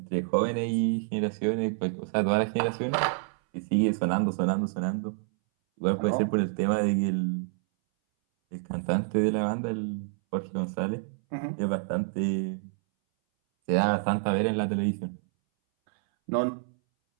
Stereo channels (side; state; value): left; silent; 59 dB below the other